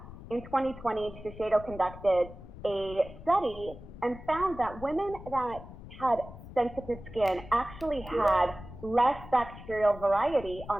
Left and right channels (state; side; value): noise; left; rumble, 15 dB below the sound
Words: in 2020, Shiseido conducted a study and found that women that had sensitive skin actually had less bacterial variety